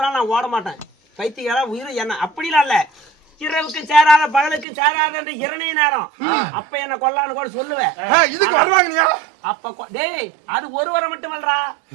நான் ஓட மாட்டேன். பைத்தியக்காரா உயிர் என்ன அப்படிலாம் இல்ல. இரவுக்கு சேராத பகலுக்கு சேராத என்று இரணை நேரம். அப்ப என்ன கொல்லான்னு கூட சொல்லுவேன். இதுக்கு வருவாங்க அப்ப டேய் அது ஒரு வரம் மட்டுமல்லடா,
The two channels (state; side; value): drops out; left; at 4.7 s